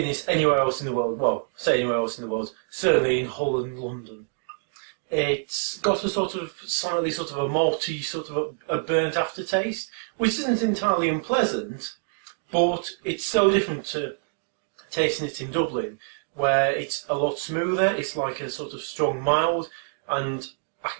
anywhere else in the world. Well, say anywhere else in the world, certainly in Holland, London. It's got a slightly a malty, a burnt aftertaste, which isn't entirely unpleasant, but it's so different to tasting it in Dublin, where it's a lot smoother. It's like a sort of strong mild, and I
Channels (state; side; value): silent; left; digital silence